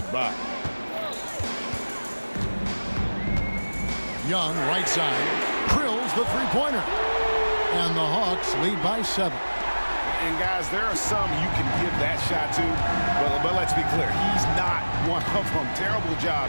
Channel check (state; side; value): inverted; both; correlation -1.00